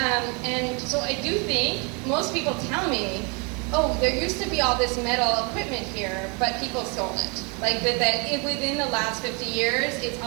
so I do think, most people tell me, oh, there used to be all this metal equipment here, but people stole it. Like that within the last 50 years, it's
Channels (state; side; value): quieter; left; 32.4 dB